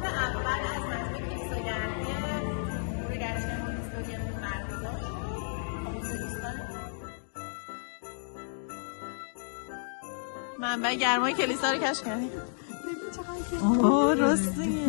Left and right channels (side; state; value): right; silent; digital silence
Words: منبع گرمای کلیسا رو کشف کردیم. اوه راستیه.